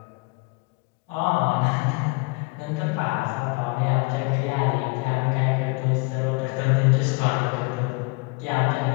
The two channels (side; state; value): right; quieter; 29.0 dB